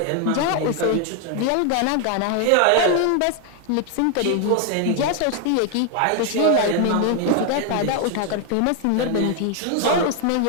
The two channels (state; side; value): different; both; correlation 0.01